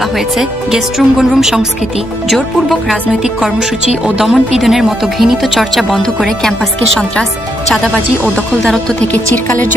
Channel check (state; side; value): normal; both; correlation 0.79